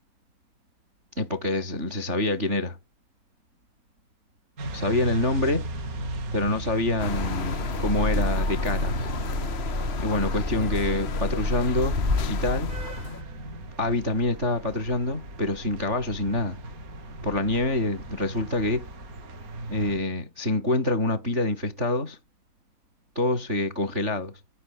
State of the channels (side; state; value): left; late; 3.4 ms